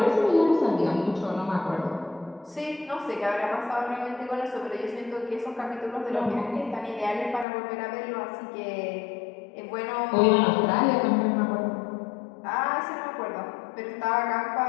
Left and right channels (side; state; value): right; drops out; at 7.5 s